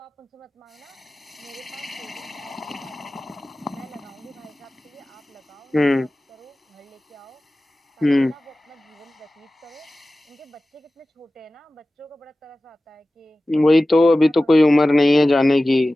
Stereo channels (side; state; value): both; normal; correlation 0.96